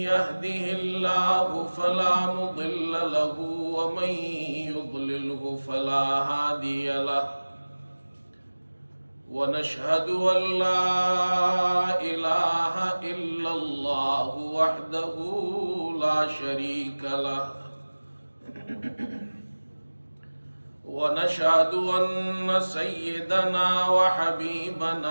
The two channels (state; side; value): inverted; both; correlation -1.00